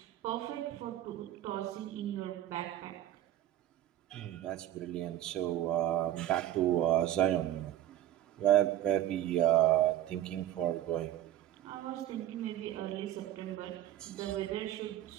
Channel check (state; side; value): quieter; left; 12.6 dB